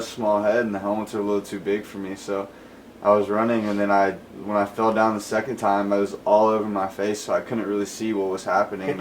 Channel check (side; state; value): both; identical; correlation 1.00